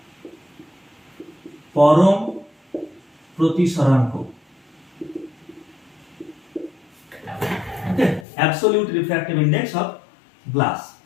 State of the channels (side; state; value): right; drops out; at 8.2 s